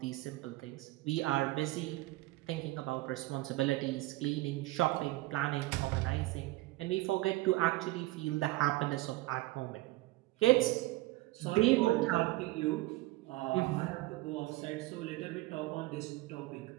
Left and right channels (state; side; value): quieter; left; 19.3 dB